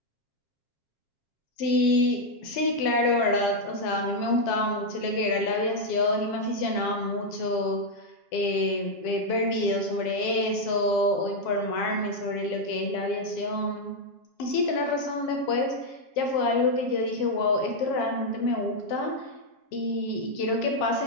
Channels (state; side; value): late; right; 7.3 ms